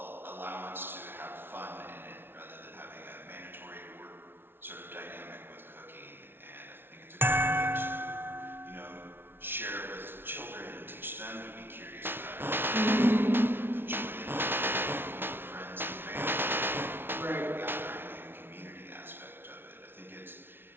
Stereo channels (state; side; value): late; left; 0.11 ms